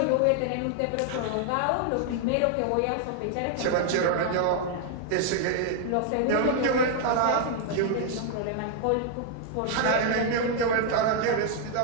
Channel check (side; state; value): both; different; correlation 0.00